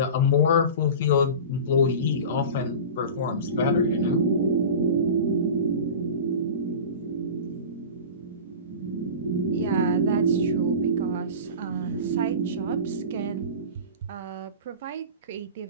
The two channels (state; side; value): inverted; both; correlation -0.32